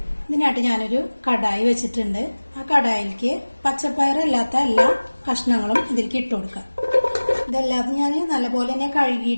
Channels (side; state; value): both; inverted; correlation -1.00